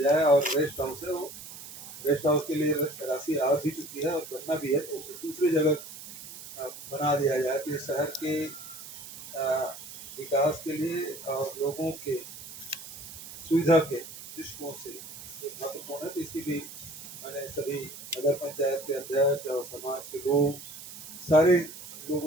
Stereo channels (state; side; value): noise; right; hiss, 13 dB below the sound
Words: और रेस्ट हाउस है वो रेस्ट हाउस के लिए राशि आ भी चुकी है और बनना भी है, तो उसे दूसरी जगह बना दिया जाए तो ये शहर के विकास के लिए और लोगों के सुविधा के दृष्टिकोण से महत्वपूर्ण है। तो इसकी भी मैंने सभी नगर पंचायत के अध्यक्ष और समाज के लोग सारे